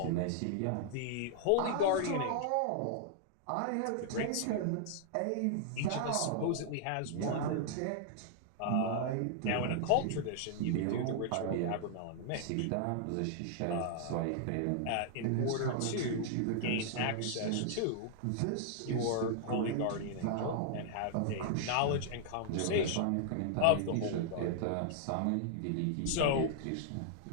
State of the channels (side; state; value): both; different; correlation -0.01